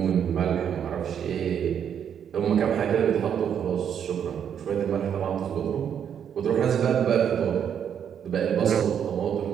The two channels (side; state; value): left; quieter; 8.5 dB